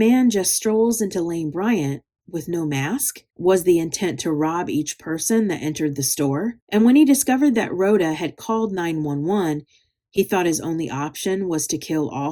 just strolls into Lane Bryant with no mask? Was the intent to rob each person that entered the store? And when he discovered that Rhoda had called 911, he thought his only option was to kill all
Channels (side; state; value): both; identical; correlation 1.00